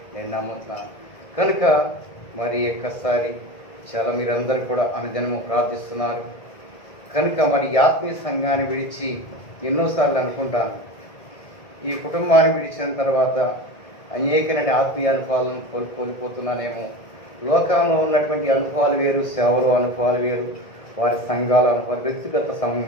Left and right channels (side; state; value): right; late; 1.5 ms